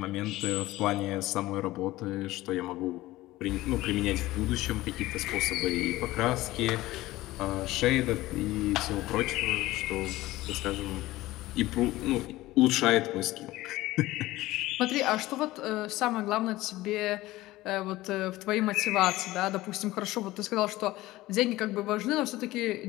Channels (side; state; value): right; quieter; 17.7 dB